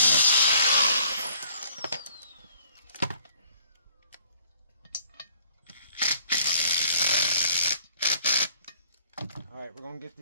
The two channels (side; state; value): both; inverted; correlation -0.59